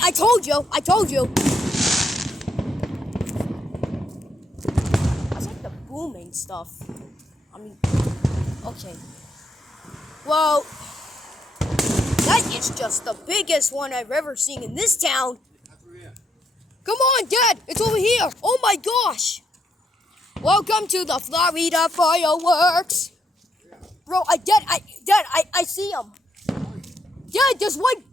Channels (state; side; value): normal; both; correlation 0.76